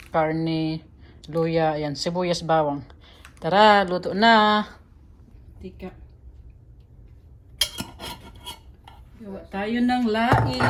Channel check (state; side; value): identical; both; correlation 1.00